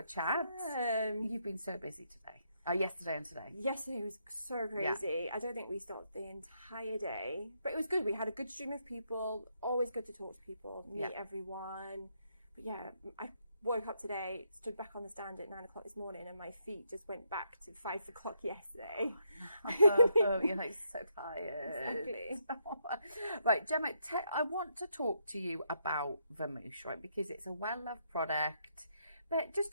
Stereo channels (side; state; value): both; inverted; correlation -0.77